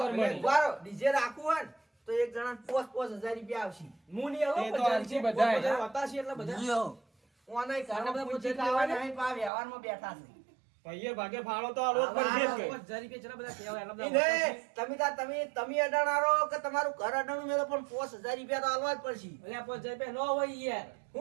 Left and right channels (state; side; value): drops out; left; at 9.5 s